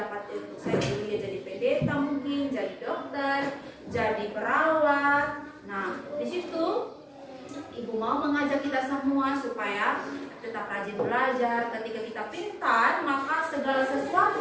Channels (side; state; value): both; identical; correlation 1.00